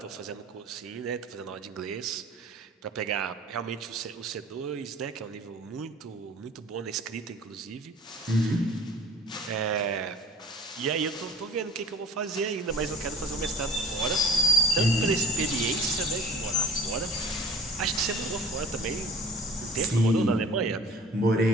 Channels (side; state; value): both; normal; correlation 0.46